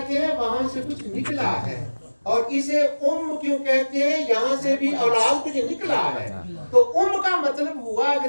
ہیں؟ وہاں سے کچھ نکلا ہے. اور اسے کیوں کہتے ہیں؟ یہاں سے بھی اولاد کچھ نکلا ہے. تو کا مطلب ہوا،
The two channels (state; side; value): inverted; both; correlation -1.00